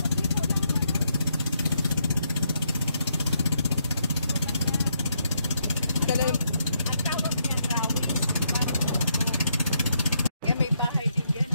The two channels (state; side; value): inverted; both; correlation -0.77